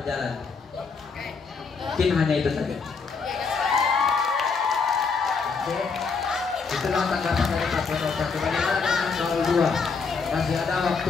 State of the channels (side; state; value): right; quieter; 5.0 dB